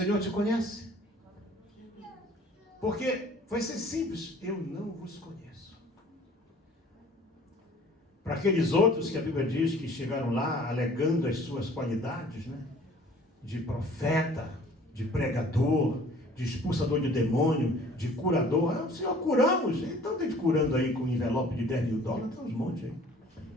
te conhece? Porque vai ser simples, eu não vos conheço. Para aqueles outros que a Bíblia diz que chegaram lá alegando as suas qualidades, né? De profeta, de pregador, de expulsador de demônio, de curador. Senhor, curamos. Então tem gente curando aí com um envelope de $10 mil, tem uns montes aí.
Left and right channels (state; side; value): normal; both; correlation 0.52